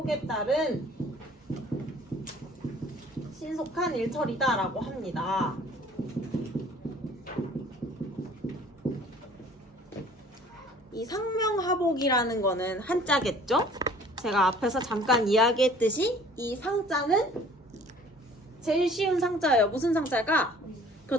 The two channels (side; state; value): both; normal; correlation 0.52